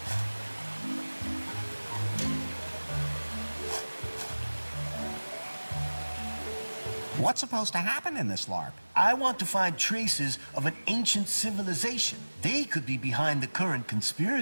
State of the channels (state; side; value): inverted; both; correlation -1.00